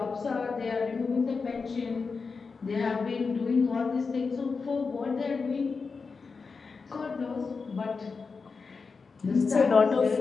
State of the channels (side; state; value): right; quieter; 4.8 dB